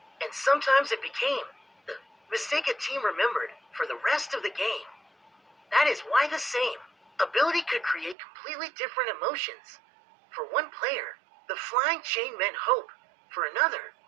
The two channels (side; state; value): left; drops out; at 8.2 s